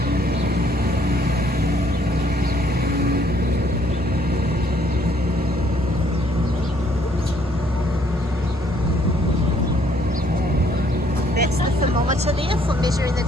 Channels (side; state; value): both; normal; correlation 0.65